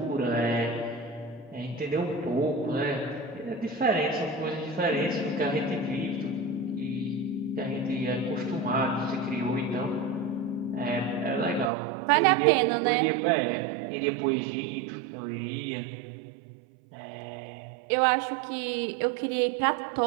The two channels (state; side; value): drops out; left; at 11.7 s